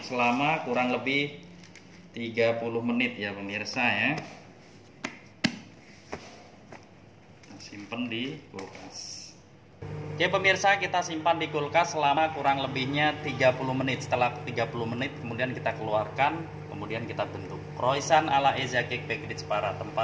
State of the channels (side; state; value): both; identical; correlation 1.00